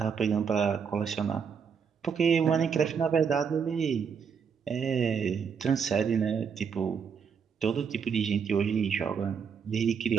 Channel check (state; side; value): quieter; left; 6.6 dB